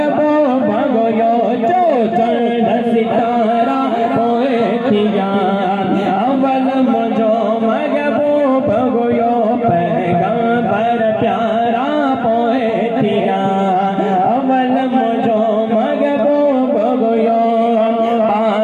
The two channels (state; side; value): identical; both; correlation 1.00